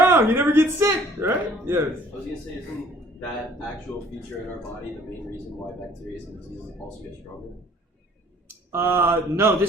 You never get sick, right? Yes. I was going to say, isn't that actual feature in our body the main reason why bacteria and diseases also get stronger? No,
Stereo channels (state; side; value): normal; both; correlation 0.56